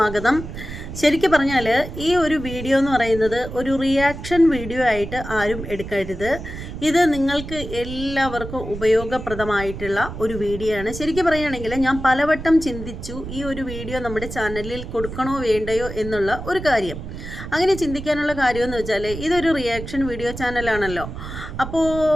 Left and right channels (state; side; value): noise; right; rumble, 9 dB below the sound